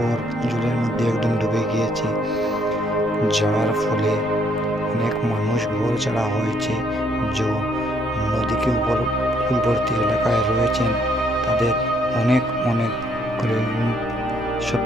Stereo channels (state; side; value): noise; right; rumble, 18 dB below the sound